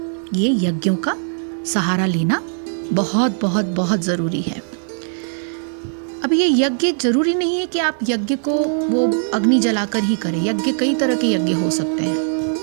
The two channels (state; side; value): silent; left; 66 dB below the other